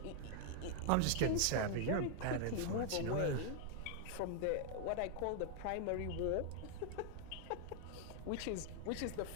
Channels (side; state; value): both; different; correlation 0.00